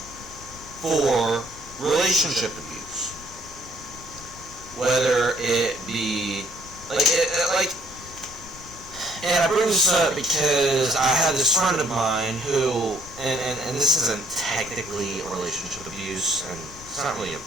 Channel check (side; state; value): left; noise; rumble, 18 dB below the sound